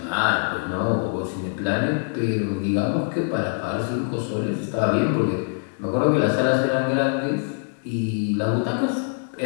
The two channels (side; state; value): right; silent; 63 dB below the other